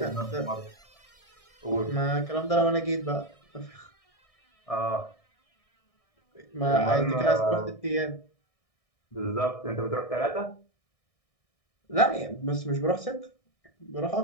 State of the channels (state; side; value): late; right; 1.6 ms